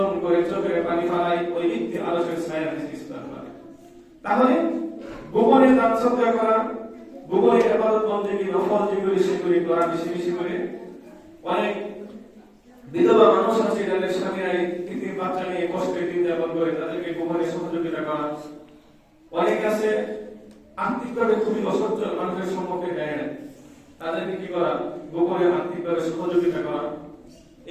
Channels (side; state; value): both; identical; correlation 1.00